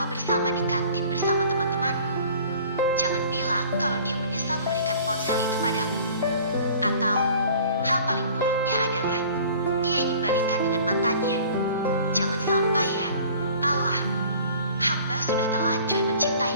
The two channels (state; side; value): inverted; both; correlation -0.48